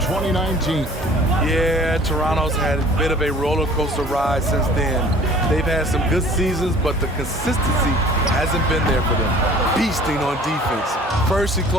Yeah, Toronto's had a bit of a roller coaster ride since then. They've had some good seasons, but the consistency hasn't been there for them. Beasting on defense. First he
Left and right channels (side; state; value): both; normal; correlation 0.49